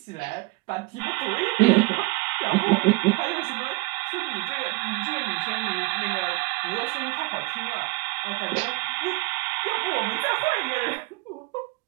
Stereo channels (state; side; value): quieter; left; 25.1 dB